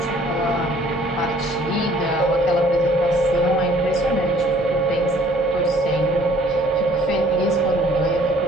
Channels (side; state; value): both; normal; correlation 0.57